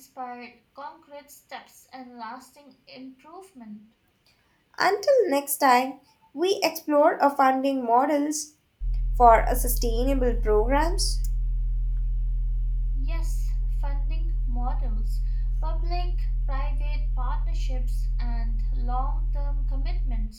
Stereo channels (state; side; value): identical; both; correlation 1.00